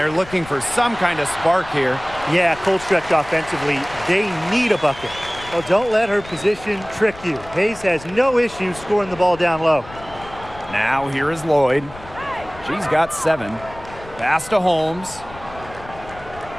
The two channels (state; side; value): noise; left; rumble, 18 dB below the sound